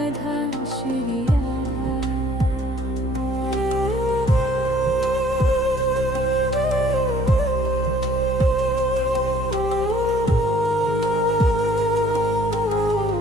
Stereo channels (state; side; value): normal; both; correlation 0.57